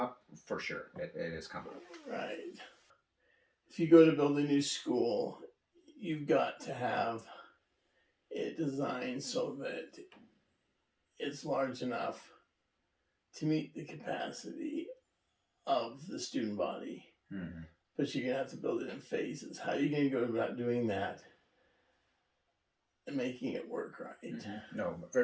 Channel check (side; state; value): both; identical; correlation 1.00